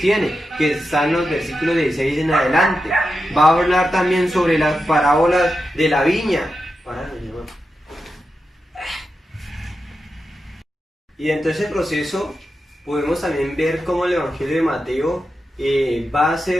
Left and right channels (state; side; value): normal; both; correlation 0.89